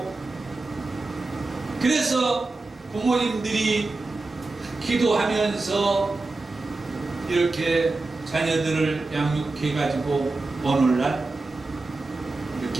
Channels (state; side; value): quieter; left; 3.3 dB